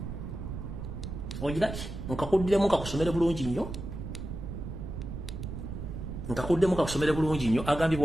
ojiraki nkakuddemu kakusomere bulungi nnyo agambe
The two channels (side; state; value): right; noise; rumble, 7 dB below the sound